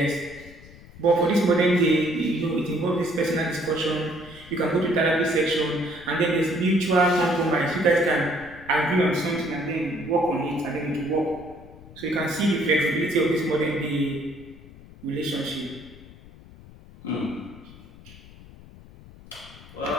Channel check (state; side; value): noise; left; rumble, 20 dB below the sound